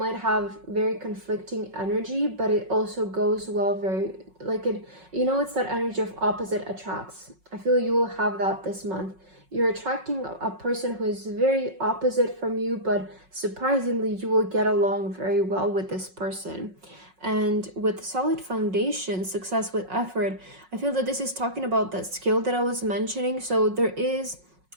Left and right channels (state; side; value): late; left; 5.4 ms